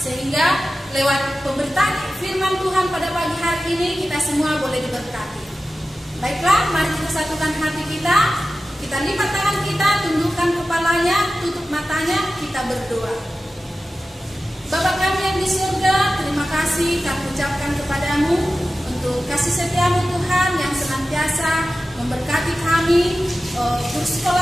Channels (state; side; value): normal; both; correlation 0.94